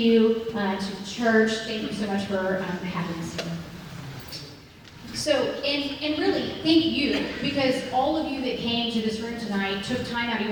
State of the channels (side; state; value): both; identical; correlation 1.00